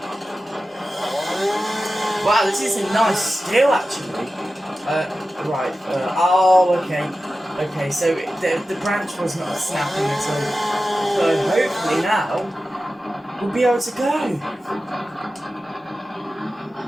Wow, this is a nice steel actually. Right, oh okay, so the branch was not snapping at all, so hopefully now we'll be able to go.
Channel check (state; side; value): normal; both; correlation 0.94